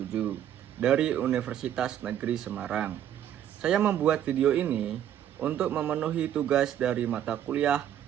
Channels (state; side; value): quieter; left; 10.6 dB